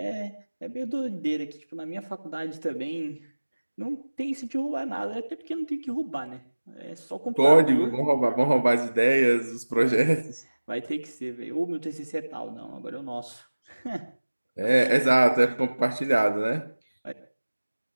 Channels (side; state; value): both; inverted; correlation -1.00